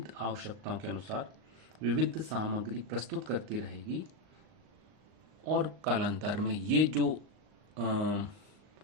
आवश्यकताओं के अनुसार विविध सामग्री प्रस्तुत करती रहेगी। और कालांतर में ये जो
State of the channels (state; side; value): late; left; 38 ms